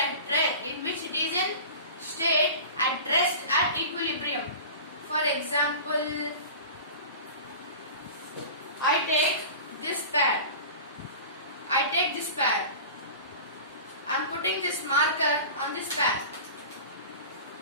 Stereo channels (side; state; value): both; inverted; correlation -0.36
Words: in which it is in state at rest at equilibrium. For example, I take this pad. I am putting this marker on this pad.